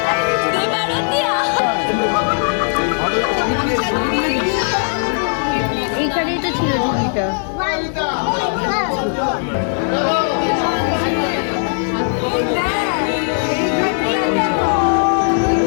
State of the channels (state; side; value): silent; right; digital silence